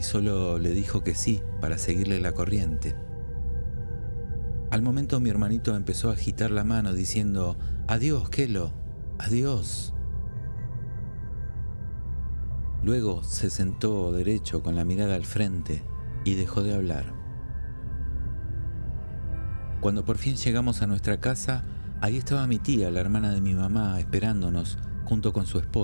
solo le dijo que sí para seguirle la corriente. Al momento mi hermanito empezó a agitar la mano diciendo: «Adiós, Kelo, adiós». Luego se sentó derecho con la mirada al frente y dejó de hablar. Cuando por fin llegamos a nuestra casa, ahí estaba mi tía, la hermana de mi mamá, esperándonos junto con su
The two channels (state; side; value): inverted; both; correlation -1.00